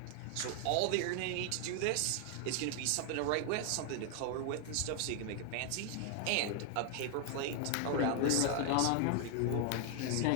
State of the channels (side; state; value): both; different; correlation 0.00